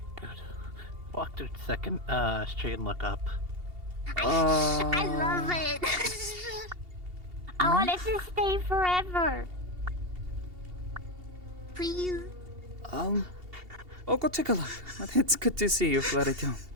Good. Walk to the second street and look up. I love it. I want it to stay forever. Please. I'll go take a look. It's good to see you, Flarito.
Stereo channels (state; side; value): late; left; 2.8 ms